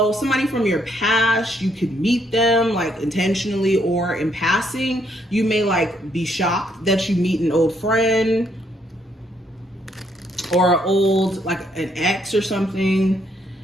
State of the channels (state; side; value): normal; both; correlation 0.72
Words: somebody from your past, you could meet them like intentionally or in passing. You may like be shocked that you meet an old friend or an old, like an ex or something.